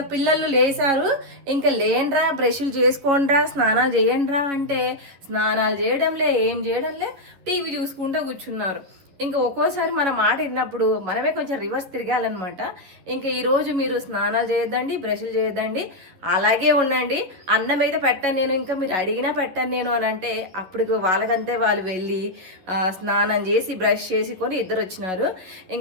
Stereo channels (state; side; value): late; left; 11 ms